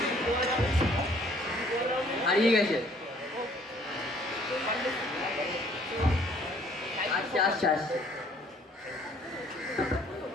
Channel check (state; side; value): normal; both; correlation 0.59